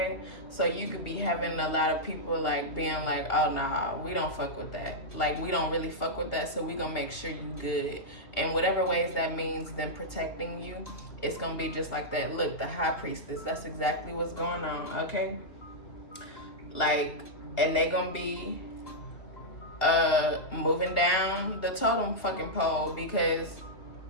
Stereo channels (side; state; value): right; late; 2.5 ms